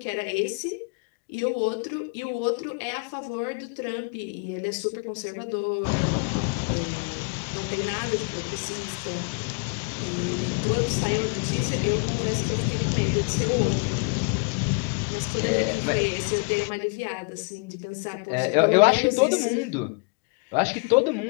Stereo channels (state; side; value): quieter; right; 32.2 dB